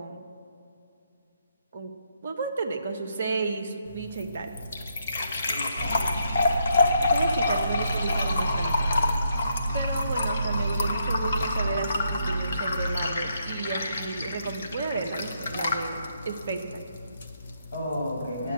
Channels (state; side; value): inverted; both; correlation -0.76